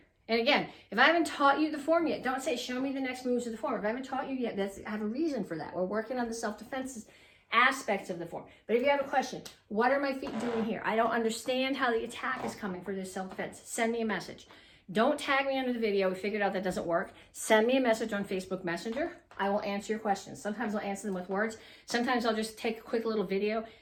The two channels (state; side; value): identical; both; correlation 1.00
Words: and again, if I haven't taught you the form yet, don't say, show me the next moves of the form. If I haven't taught you yet, I have a reason for that. We're working on the self-defense aspects of the form. But if you have a question, what are my feet doing here? I don't understand how the attack is coming for this self-defense. Send me a message. Don't tag me under the video. We figured out that doesn't work. Send me a message on Facebook Messenger. I will answer your questions. Sometimes I'll answer them with words. Sometimes I'll just take a quick little video